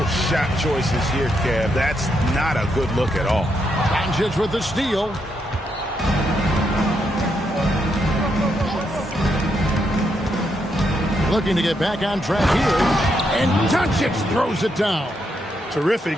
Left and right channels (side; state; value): both; normal; correlation 0.79